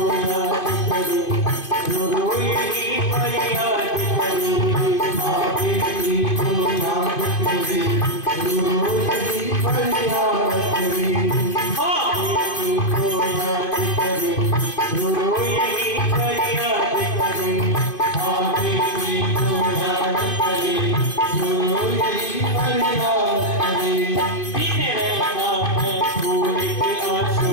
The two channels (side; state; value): right; late; 2.5 ms